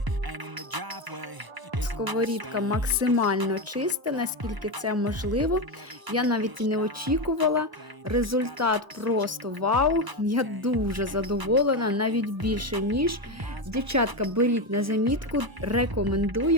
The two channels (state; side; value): late; left; 1.0 ms